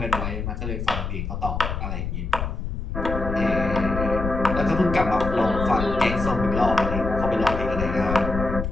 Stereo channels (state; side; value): noise; left; rumble, 4 dB below the sound